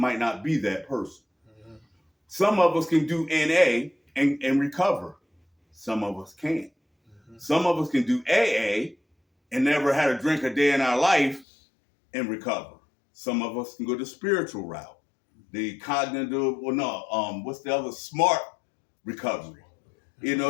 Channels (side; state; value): right; drops out; at 11.5 s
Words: not be that person. Some of us can do NA and recover. Some of us can't. Some of us can do AA and never had a drink a day in our life and recover. Some of us can go the spiritual route, the cognitive, what's the other, smart recovery. You